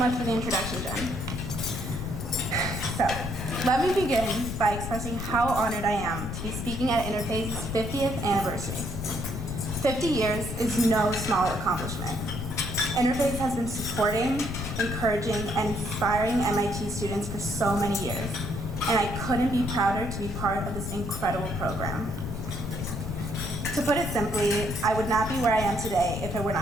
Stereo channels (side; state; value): left; noise; rumble, 5 dB below the sound